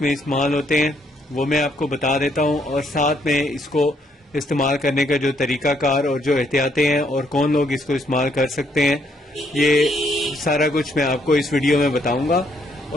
इस्तेमाल होते हैं वो मैं आपको बता देता हूँ, और साथ में इसको इस्तेमाल करने का जो तरीक़ाकार और जो एहतियातें हैं और कौन लोग इसको इस्तेमाल कर सकते हैं, ये सारा कुछ मैं आपको इस वीडियो में बताऊँगा।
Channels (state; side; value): normal; both; correlation 0.71